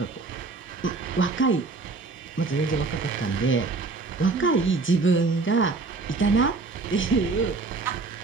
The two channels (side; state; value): left; quieter; 3.9 dB